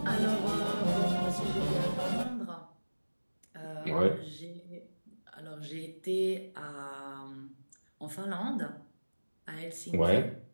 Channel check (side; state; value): both; inverted; correlation -1.00